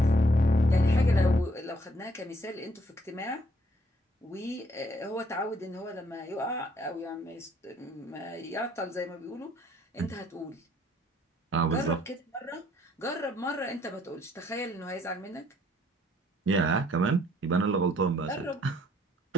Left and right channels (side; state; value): both; normal; correlation 0.65